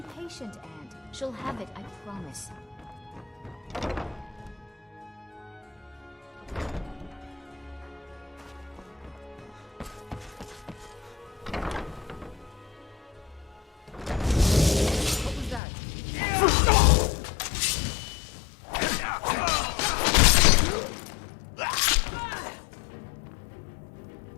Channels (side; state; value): right; drops out; at 15.6 s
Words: patient, Aunt. She'll have it, I promise. What was that?